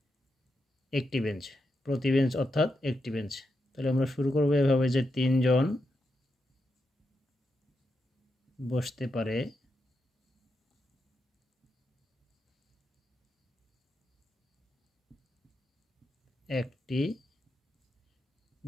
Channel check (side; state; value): both; normal; correlation 0.85